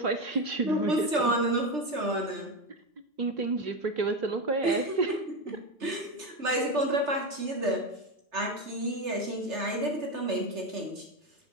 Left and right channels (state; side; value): late; left; 3.3 ms